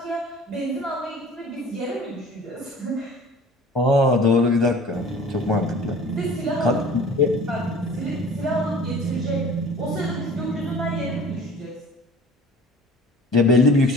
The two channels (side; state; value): both; normal; correlation 0.45